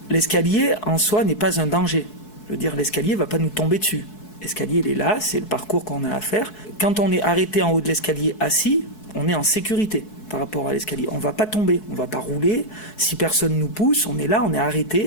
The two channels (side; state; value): right; late; 4.7 ms